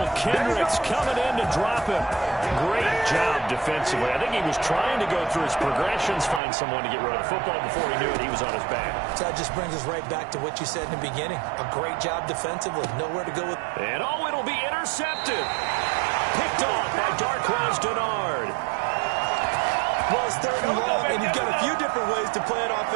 Kendricks coming in to drop him. Great job defensively. I think he was trying to go through his progressions, find someone to get rid of the football. Before he knew it, he was on his back. So that just brings us right back to what you said in the beginning. A great job defensively. Nowhere to go with. And it'll be intercepted. Picked off by Darquez Dennard. Well, it's 3rd and long, and you've got a few different ways to play it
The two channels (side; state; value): left; drops out; at 6.4 s